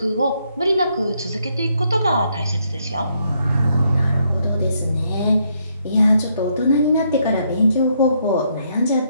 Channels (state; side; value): inverted; both; correlation -0.74